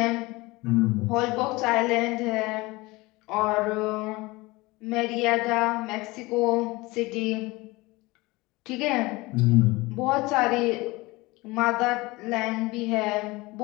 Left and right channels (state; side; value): quieter; right; 22.2 dB